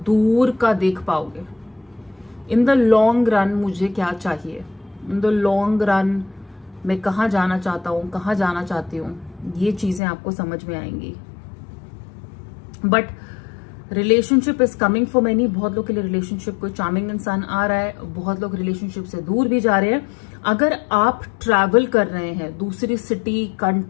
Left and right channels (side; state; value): right; drops out; at 10.0 s